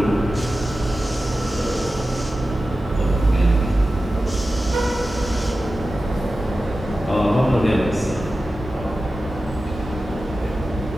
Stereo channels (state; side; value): normal; both; correlation 0.94